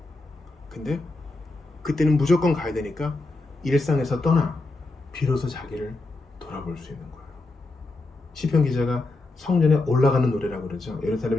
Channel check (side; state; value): right; quieter; 3.2 dB